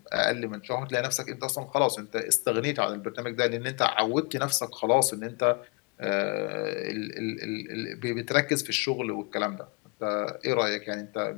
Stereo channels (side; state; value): right; quieter; 31.4 dB